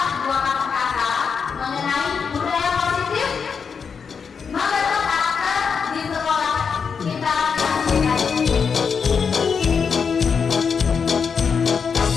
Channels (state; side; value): quieter; right; 6.1 dB